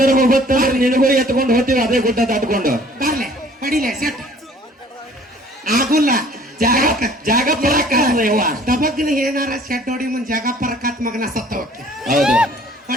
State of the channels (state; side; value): normal; both; correlation 0.54